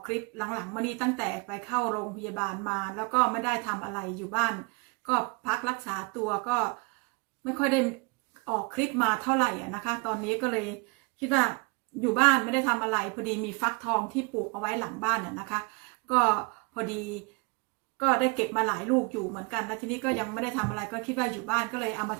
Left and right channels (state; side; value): quieter; left; 30.4 dB